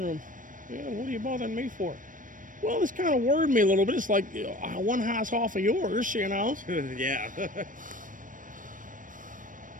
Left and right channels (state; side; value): late; left; 0.38 ms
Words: room. Yeah, what are you bothering me for? Well, this kind of worried me a little bit. It's like, you know, one house off of yours, you know. Yeah.